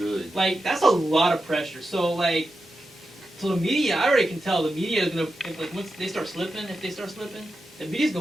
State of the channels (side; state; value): both; normal; correlation 0.89